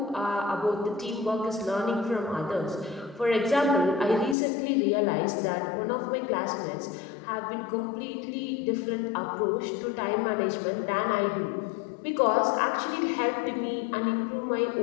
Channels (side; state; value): right; drops out; at 4.4 s